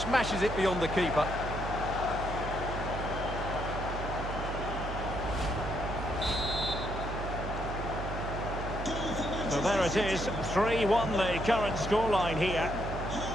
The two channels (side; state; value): right; noise; hum, 5 dB below the sound